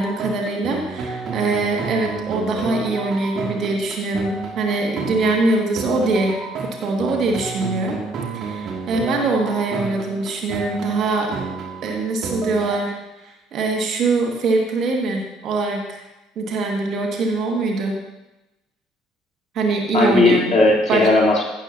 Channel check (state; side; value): normal; both; correlation 0.64